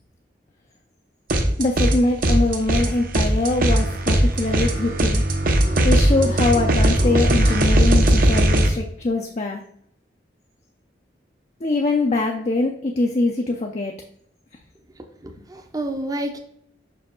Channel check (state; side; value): normal; both; correlation 0.76